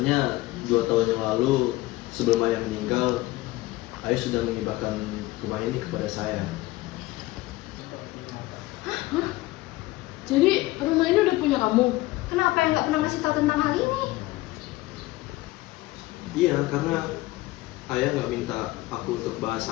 2 tahun yang lalu sebelum ayah meninggal, ayah sudah menghibahkan rumah ini kepada saya. Jadi rumah ini udah punya kamu? Kenapa yang nggak pernah ngasih tahu tentang hal ini? Iya, karena ayah nggak minta aku untuk bahas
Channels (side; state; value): right; quieter; 18.8 dB